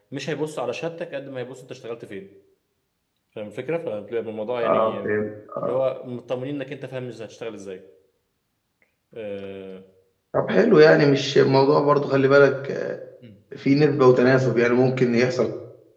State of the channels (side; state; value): both; identical; correlation 1.00